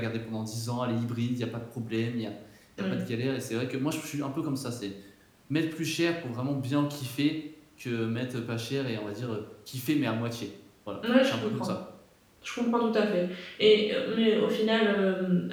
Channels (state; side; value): identical; both; correlation 1.00